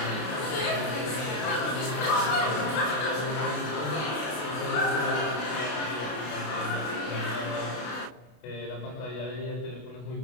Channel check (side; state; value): right; late; 32 ms